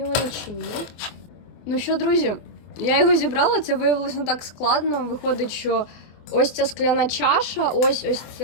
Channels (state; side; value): late; right; 24 ms